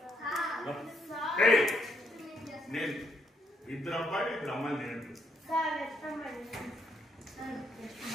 ఇప్పుడు అమ్మాయి తినట్టు.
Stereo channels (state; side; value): normal; both; correlation 0.74